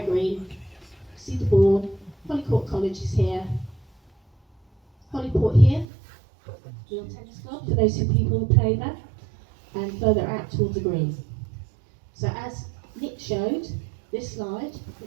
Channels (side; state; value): left; drops out; at 5.9 s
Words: see the board, Holyport College is here, Holyport here, Real Tennis Club for those people who play there, and further out towards the green. So as Nick showed, this slide